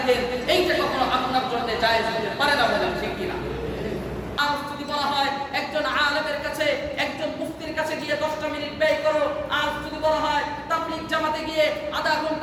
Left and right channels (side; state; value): both; identical; correlation 1.00